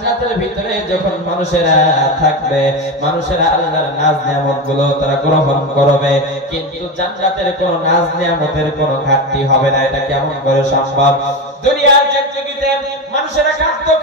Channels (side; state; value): both; normal; correlation 0.19